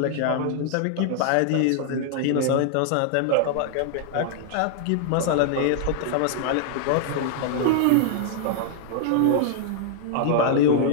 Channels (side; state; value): both; different; correlation -0.01